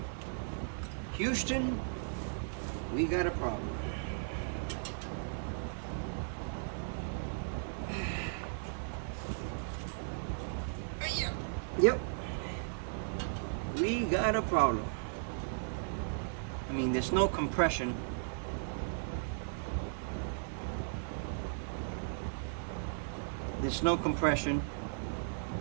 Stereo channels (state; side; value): silent; left; 54 dB below the other